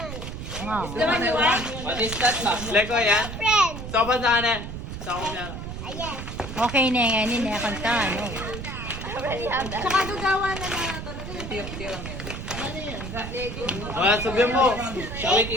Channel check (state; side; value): noise; right; rumble, 8 dB below the sound